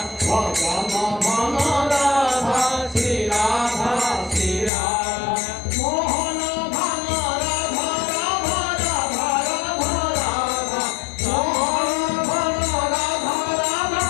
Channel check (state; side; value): drops out; right; at 4.7 s